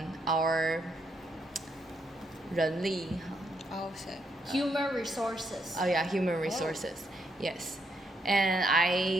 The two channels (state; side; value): normal; both; correlation 0.77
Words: our 人力? Oh, so. Human resources. Oh yeah, human resources. Yes. And